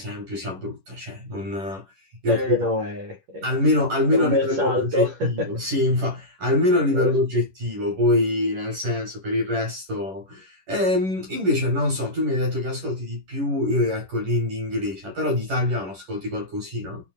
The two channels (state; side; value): late; left; 11 ms